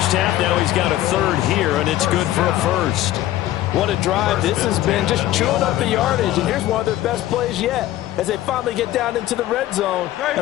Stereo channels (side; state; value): right; quieter; 14.3 dB